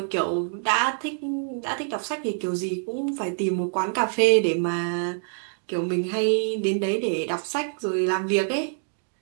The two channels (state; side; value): silent; left; digital silence